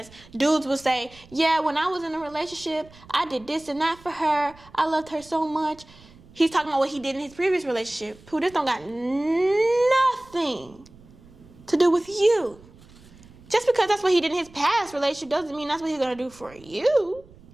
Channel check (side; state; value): right; noise; rumble, 24 dB below the sound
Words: dudes will say, yeah, when I was in a relationship, I did this and that for her. I loved her so much. He's talking about what he did in his previous relationship. Pooh, this don't got nothing to do with you. Just because that's what he did in his past relationship doesn't mean that's what he's going to do for you.